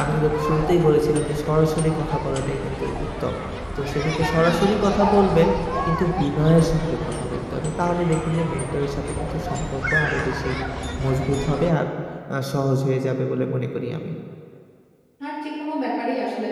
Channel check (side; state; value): both; identical; correlation 1.00